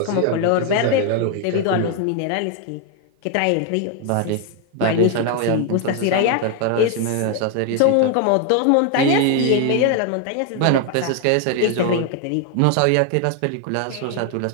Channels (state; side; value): different; both; correlation 0.01